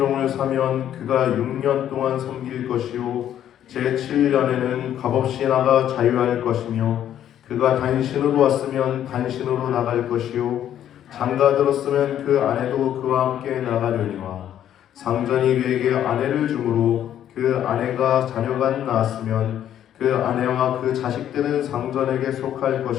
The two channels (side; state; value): right; quieter; 10.7 dB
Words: 사면 그가 6년 동안 섬길 것이요 제7년에는 값없이 나가 자유할 것이며 그가 단신으로 왔으면 단신으로 나갈 것이요 장가 들었으면 그 아내도 그와 함께 나가려니와 상전이 그에게 아내를 주므로 그 아내가 자녀가 낳았으면 그 아내와 그 자식들은 상전에게 속할